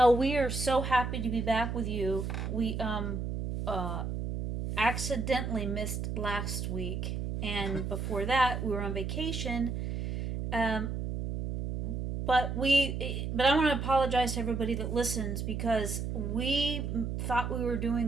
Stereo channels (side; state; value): right; noise; hum, 3 dB below the sound